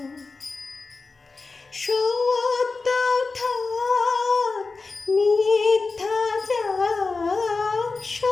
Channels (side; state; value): right; quieter; 4.0 dB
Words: সত্য থাক মিথ্যা যাক,